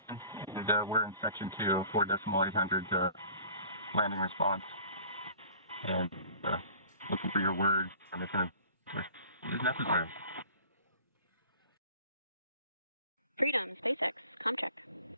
We're in section 2, 4.800 landing response. And looking for your words on if it is necessary. Freedom, SpaceX, ComCheck.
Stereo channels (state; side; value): inverted; both; correlation -0.48